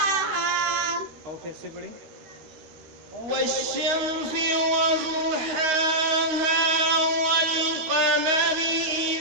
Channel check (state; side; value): late; left; 13 ms